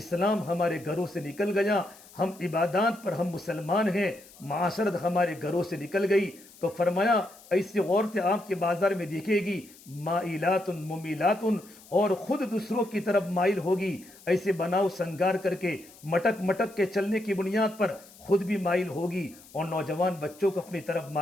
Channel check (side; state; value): left; noise; hiss, 23 dB below the sound